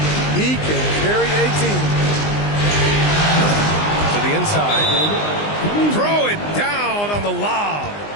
He can carry a team. To the inside. Throw it down on the lob.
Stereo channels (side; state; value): right; late; 20 ms